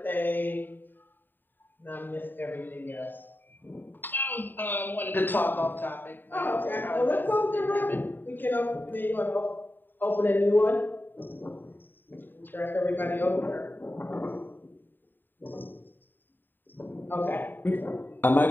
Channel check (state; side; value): late; right; 0.092 ms